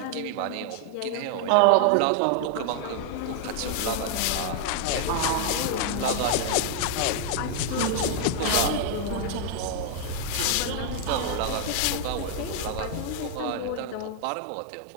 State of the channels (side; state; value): both; different; correlation 0.00